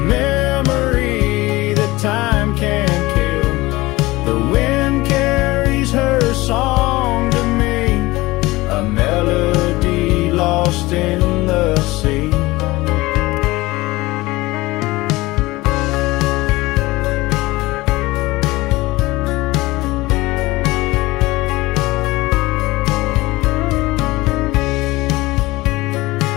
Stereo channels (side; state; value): right; quieter; 20.3 dB